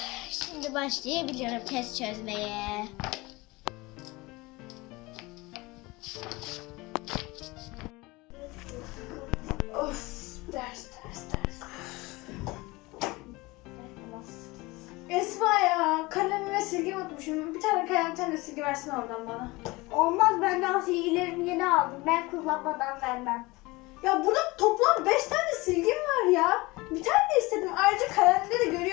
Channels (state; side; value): quieter; right; 22.6 dB